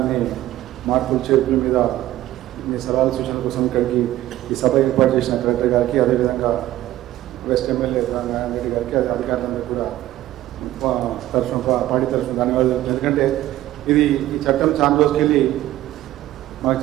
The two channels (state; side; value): quieter; left; 14.7 dB